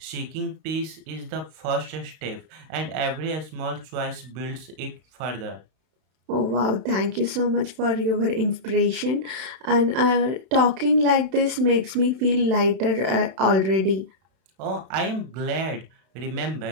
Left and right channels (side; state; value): left; late; 31 ms